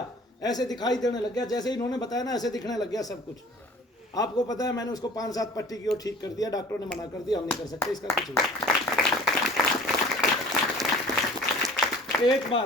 ऐसे दिखाई देने लग गया, जैसे इन्होंने बताया ना ऐसे दिखने लग गया सब कुछ। आपको पता है मैंने उसको 5-7 पट्टी की और ठीक कर दिया, डॉक्टरों ने मना कर दिया, हम नहीं कर सकते इसका कुछ नहीं। एक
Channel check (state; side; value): normal; both; correlation 0.47